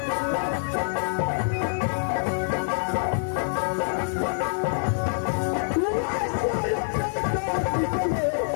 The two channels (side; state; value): right; silent; digital silence